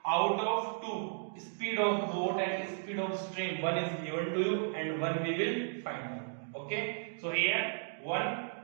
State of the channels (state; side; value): silent; left; digital silence